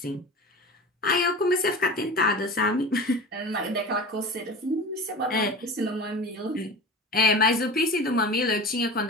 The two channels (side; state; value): both; normal; correlation 0.33